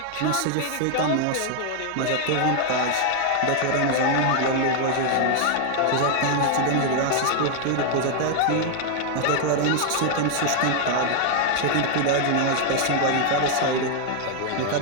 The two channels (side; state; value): both; different; correlation 0.00